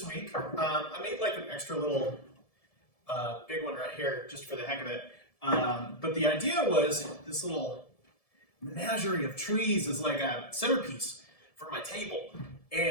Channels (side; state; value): right; late; 1.7 ms